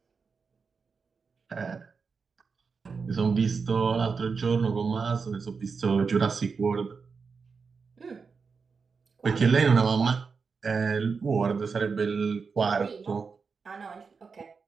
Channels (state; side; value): quieter; left; 5.2 dB